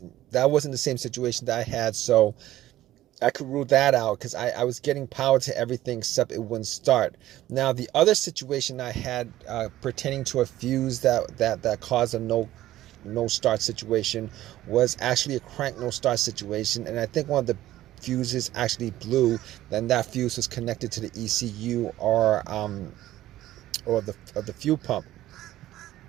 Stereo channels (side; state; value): left; quieter; 14.6 dB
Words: wasn't the same situation that I had, so I could rule that out, because I was getting power to everything except it wouldn't start. Now, the other situation I had pertaining to a fuse that caused a no start situation was actually a crank no start situation, and I think one of the fuses actually blew. Then that fuse was connected to the ECU or the fuel pump.